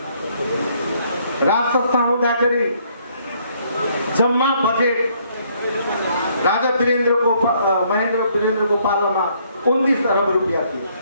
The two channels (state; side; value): inverted; both; correlation -0.67